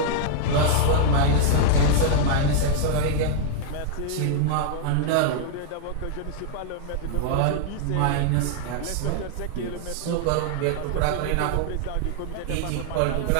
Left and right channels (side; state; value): both; different; correlation -0.01